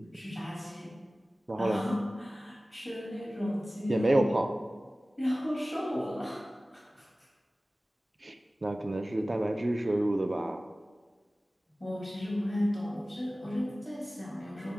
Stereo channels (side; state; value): both; normal; correlation 0.97